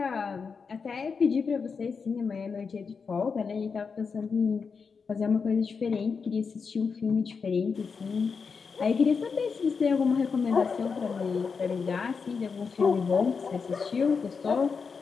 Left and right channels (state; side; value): quieter; right; 5.4 dB